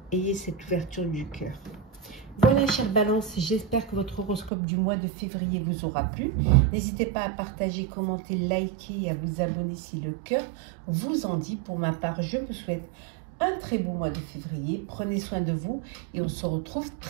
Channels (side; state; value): left; drops out; at 4.5 s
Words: Ayez cette ouverture du cœur. Voilà, chère Balance, j'espère que votre horoscope du mois de février vous aura plu. N'hésitez pas à partager, commenter, liker et à vous abonner si le cœur vous en dit. Pour ma part, je vous souhaite un très beau mois de février. Prenez soin de vous et on se retrouve